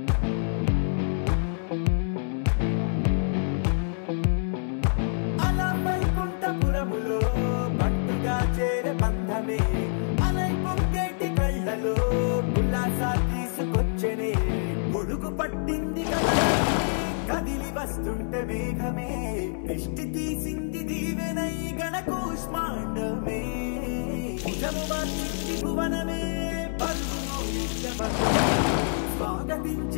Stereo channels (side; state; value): right; silent; 58 dB below the other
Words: అలా వైకుంఠపురములో పట్టుగా చేరే బంధమే అలై పొంగేటి కళ్ళలో ఉల్లాసా తీసుకొచ్చనే పొడుగు పట్టింది కదా కదిలి వస్తుంటే మేఘమే దృష్టి తీసింది దీవెనై గణకూష్మాండమే భుజము మార్చింది భువనమే పరుగు